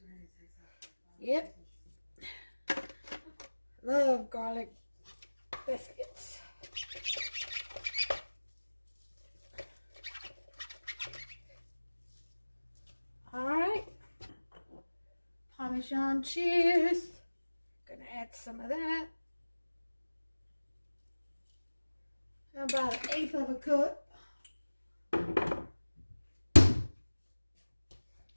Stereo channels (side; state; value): both; inverted; correlation -1.00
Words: Yep. Love garlic biscuits. Alright. Parmesan cheese. Gonna add some of that. About 1/8 of a cup.